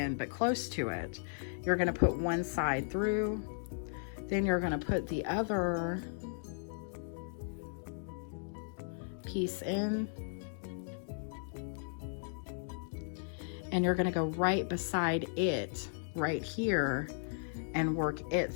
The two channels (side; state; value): right; silent; digital silence